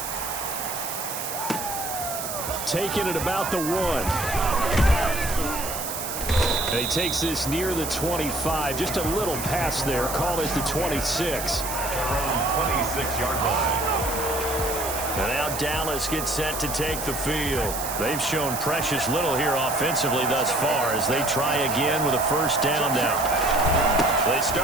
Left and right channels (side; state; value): right; noise; hiss, 6 dB below the sound